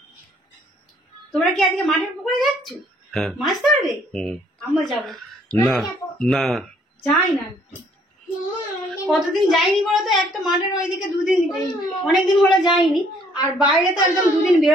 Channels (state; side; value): normal; both; correlation 0.63